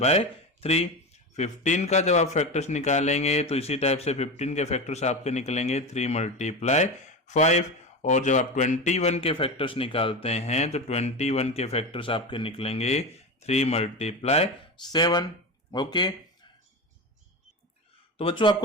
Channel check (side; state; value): both; normal; correlation 0.22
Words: 3। 15 का जब आप फैक्टर्स निकालेंगे तो इसी टाइप से 15 के फैक्टर्स आपके निकलेंगे 3 मल्टीप्लाई 5। और जब आप 21 के फैक्टर्स निकालते हैं तो 21 के फैक्टर्स आपके निकलेंगे 3 मल्टीप्लाई 7। ओके, तो बच्चों